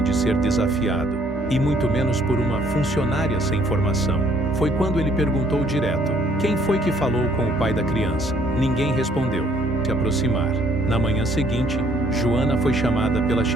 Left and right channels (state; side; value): normal; both; correlation 0.63